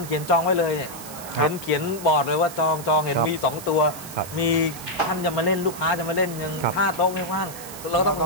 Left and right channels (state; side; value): noise; right; hiss, 13 dB below the sound